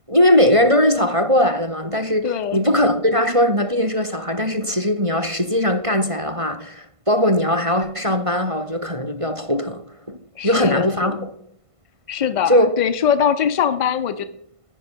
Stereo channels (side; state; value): left; late; 1.5 ms